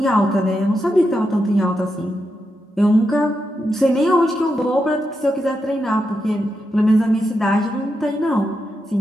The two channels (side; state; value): both; normal; correlation 0.85